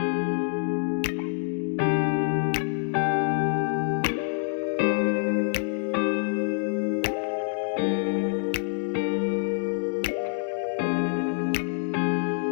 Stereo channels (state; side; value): silent; right; 61 dB below the other